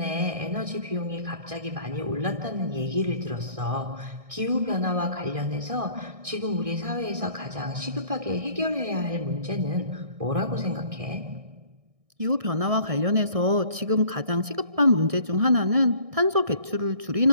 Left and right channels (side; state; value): left; late; 1.6 ms